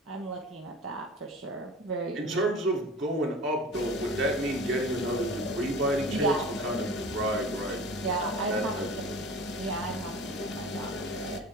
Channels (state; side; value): normal; both; correlation 0.38